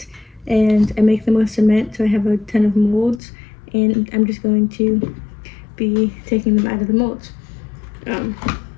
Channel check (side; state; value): right; drops out; at 3.2 s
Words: and I make them with cement, so I have a ton of molds, and I'm just going to be taking them out of the molds. And